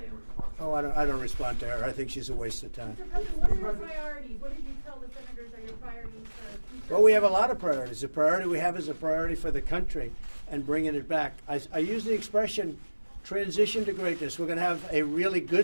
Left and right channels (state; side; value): inverted; both; correlation -1.00